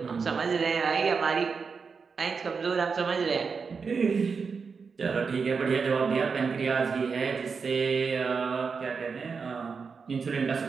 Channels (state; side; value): quieter; left; 5.3 dB